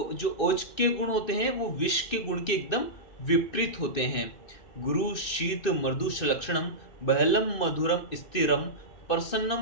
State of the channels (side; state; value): right; late; 2.6 ms